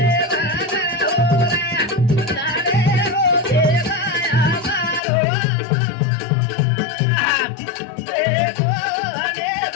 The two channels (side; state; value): right; drops out; at 5.0 s